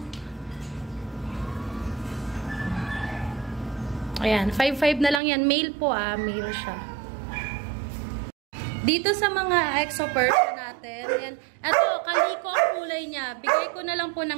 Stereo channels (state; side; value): drops out; left; at 5.2 s